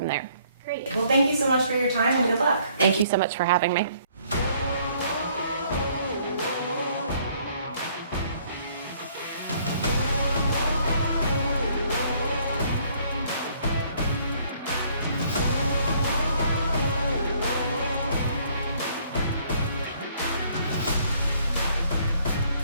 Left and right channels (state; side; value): inverted; both; correlation -0.63